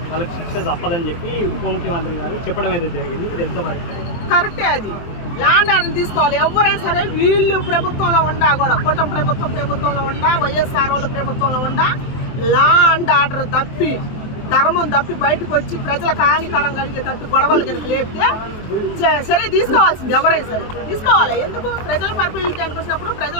వాళ్ళకి శిక్ష తప్పదని చెప్పి ఉప ముఖ్యమంత్రి గారు చెప్పడం అయితే జరిగింది. ఇది ఎంత వరకు కరెక్టే? అది ల్యాండ్ ఆర్డర్ తీసుకోవాలి. ఎవరైనా సరే వీళ్ళు ప్రభుత్వంలో ఉండా కూడా కూటమి ప్రభుత్వంలో ఉండా వైఎస్ఆర్ వాళ్ళ ప్రభుత్వంలో ఉండా ల్యాండ్ ఆర్డర్ తప్పి ధర్మం తప్పి బయటకు వచ్చి ప్రజలకు హానికరం కలిగేటట్టు గొడవలు కనుక లేపితే సరే తీసుకోవాల్సింది. ఎవరైనా సరే తీసుకోవాలి. ఎందుకు? ప్రజల పరిపాలనకి వచ్చినప్పుడు ప్రజల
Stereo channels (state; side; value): late; right; 23 ms